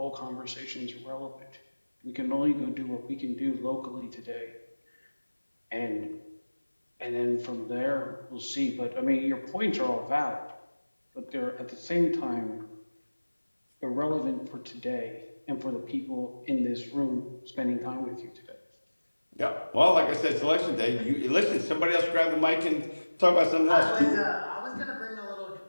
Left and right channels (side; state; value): both; inverted; correlation -1.00